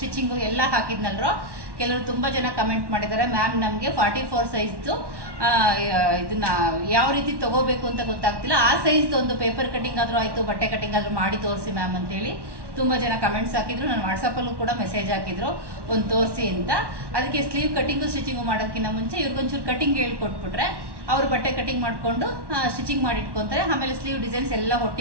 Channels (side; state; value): left; late; 1.1 ms